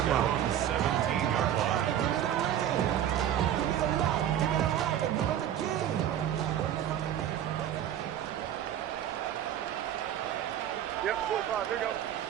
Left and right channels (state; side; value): quieter; left; 10.7 dB